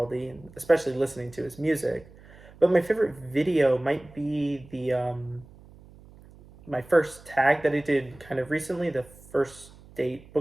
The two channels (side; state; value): right; noise; hum, 22 dB below the sound